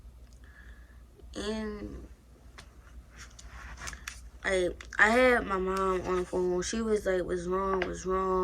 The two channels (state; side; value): identical; both; correlation 1.00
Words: And I had my mom on the phone. She was like, what's